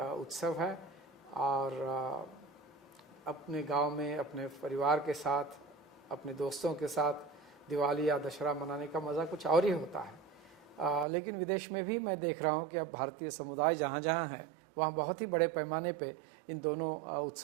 उत्सव है, और अपने गांव में अपने परिवार के साथ, अपने दोस्तों के साथ दिवाली या दशहरा मनाने का मज़ा कुछ और ही होता है। लेकिन विदेश में भी मैं देख रहा हूं कि अब भारतीय समुदाय जहां जहां है वहां बहुत ही बड़े पैमाने पे इन दोनों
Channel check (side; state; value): left; drops out; at 11.1 s